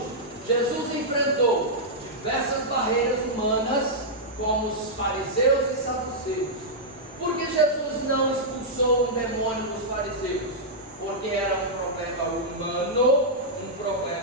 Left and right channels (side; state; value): both; normal; correlation -0.09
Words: Jesus enfrentou diversas barreiras humanas, como os fariseus e saduceus. Por que Jesus não expulsou um demônio dos fariseus? Porque era um problema humano,